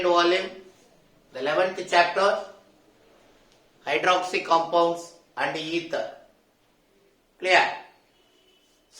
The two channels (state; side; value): identical; both; correlation 1.00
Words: volume, the 11th chapter, hydroxy compounds and ether. Clear?